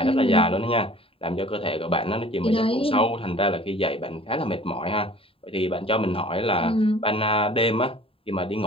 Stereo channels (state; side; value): late; right; 0.27 ms